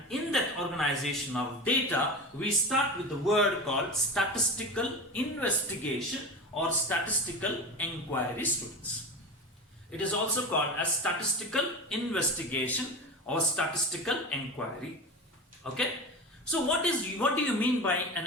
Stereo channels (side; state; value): both; normal; correlation 0.27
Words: in that organization of data, we start with the word called statistical investigation or statistical inquiry, students. It is also called as statistical investigation or statistical inquiry. Okay. So what do you mean by an